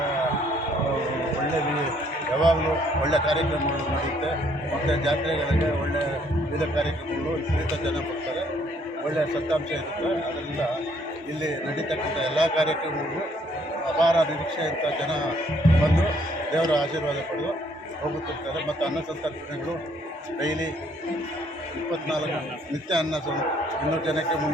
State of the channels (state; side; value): normal; both; correlation 0.65